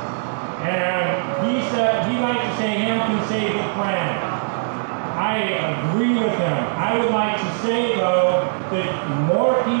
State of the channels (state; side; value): silent; left; digital silence